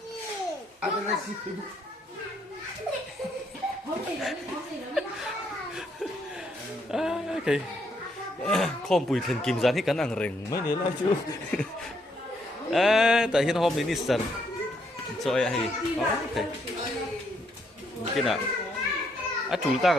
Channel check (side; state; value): both; normal; correlation 0.73